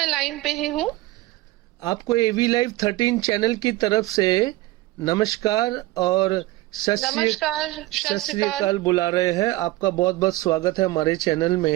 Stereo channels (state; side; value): quieter; left; 18.6 dB